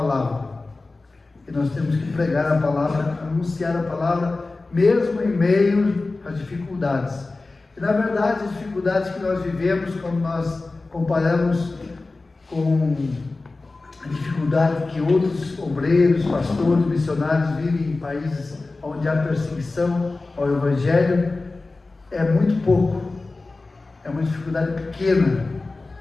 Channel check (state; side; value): quieter; right; 3.4 dB